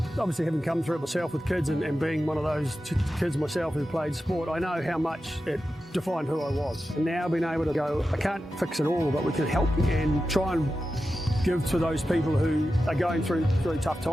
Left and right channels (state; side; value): normal; both; correlation 0.92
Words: Obviously, having come through it myself with kids and being one of those kids myself who played sport, I know how much it defined who I was. And now being able to go, I can't fix it all, but we can help and try and give to those people who are going through really tough